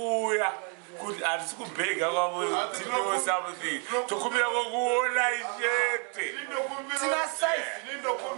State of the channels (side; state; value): left; quieter; 38.1 dB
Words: kuti hatisi kubhega kwavo tino something tokumbira kokuona chete